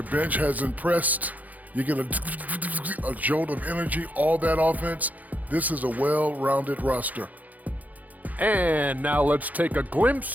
bench has impressed. You get a jolt of energy, all that offense. This is a well-rounded roster. And now let's take a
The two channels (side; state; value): left; late; 0.079 ms